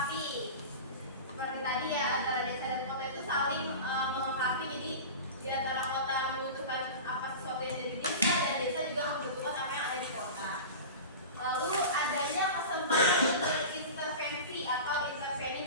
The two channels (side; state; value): both; inverted; correlation -0.31